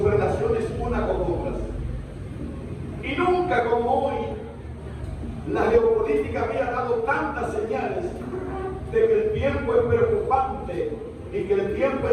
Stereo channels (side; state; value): both; identical; correlation 1.00